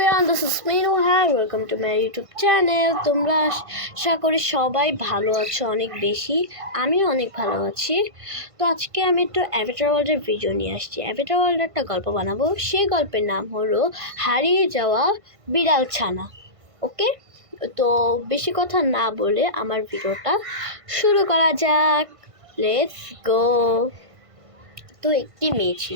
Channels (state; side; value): late; left; 1.5 ms